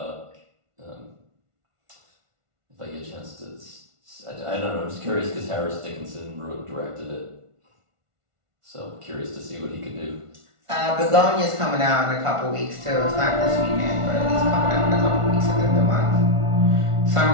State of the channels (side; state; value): left; late; 1.5 ms